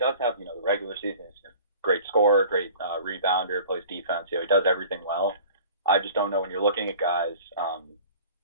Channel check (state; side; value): inverted; both; correlation -0.44